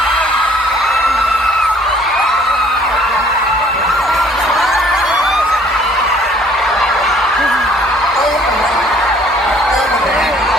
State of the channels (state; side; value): normal; both; correlation 0.57